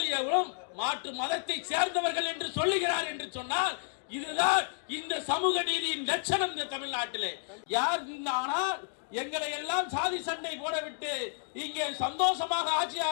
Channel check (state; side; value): silent; right; digital silence